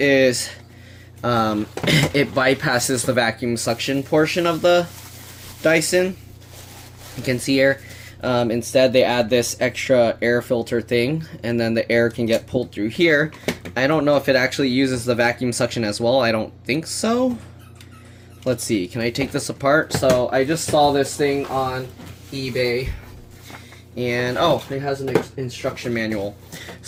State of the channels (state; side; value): identical; both; correlation 1.00